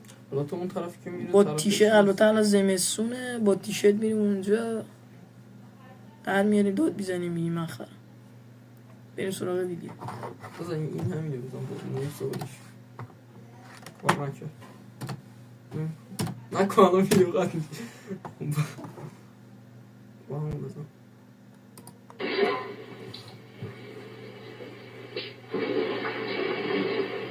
حالا تو اون طرفی که میره با تیشرت، البته الان زمستونه، با تیشرت میریم اونجا در میاریم داد بیزنیم میگیم من خرم. بریم سراغ ویدیو. بزن این همینه بزن نیم سوالش کار نکن الان ویدیو قد با همون بزن.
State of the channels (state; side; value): identical; both; correlation 1.00